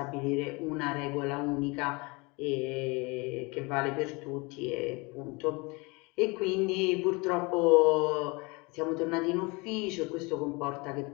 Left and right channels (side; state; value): right; quieter; 27.0 dB